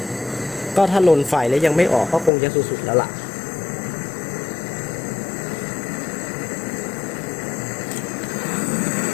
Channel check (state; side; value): drops out; right; at 2.3 s